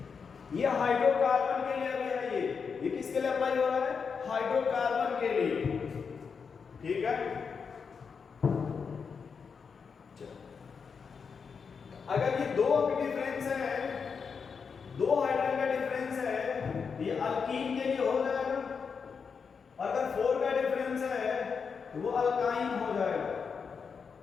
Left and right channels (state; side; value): quieter; right; 5.8 dB